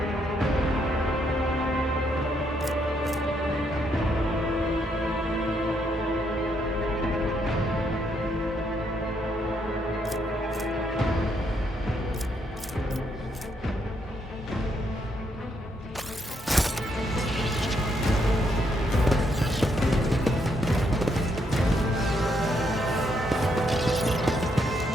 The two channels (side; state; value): both; normal; correlation 0.75